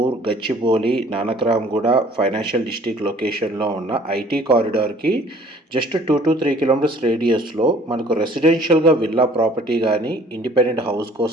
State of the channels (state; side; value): normal; both; correlation 0.54